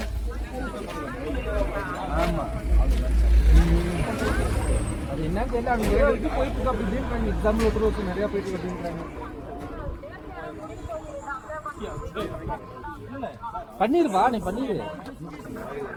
ஆமா, அது என்ன தெரியல. அவங்க இது போயிட்டு இருக்கு அப்படின்றாங்க. எக்ஸாம்பிள் ஒருத்தர் நிறைய போயிட்டு அப்படின்றாங்க. பண்ணிருவா, நீ பண்ணிடு.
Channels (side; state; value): both; identical; correlation 1.00